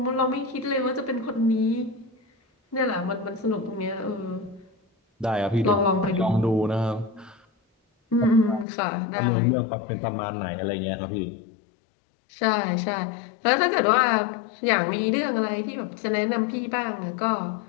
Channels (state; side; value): drops out; right; at 8.7 s